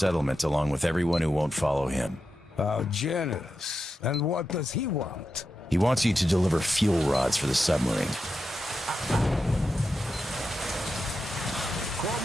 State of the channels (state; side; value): normal; both; correlation 0.88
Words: along with everyone who won't follow him. How generous. And what does he want? He wants you to deliver fuel rods for the submarine.